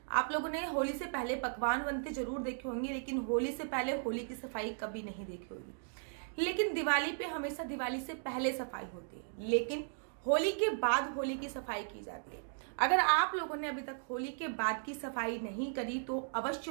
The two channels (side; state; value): left; silent; digital silence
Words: आप लोगों ने होली से पहले पकवान बनते जरूर देखे होंगे, लेकिन होली से पहले होली की सफाई कभी नहीं देखी होगी। लेकिन दिवाली पे हमेशा दिवाली से पहले सफाई होती है, लेकिन होली के बाद होली की सफाई की जाती है। अगर आप लोगों ने अभी तक होली के बाद की सफाई नहीं करी तो अवश्य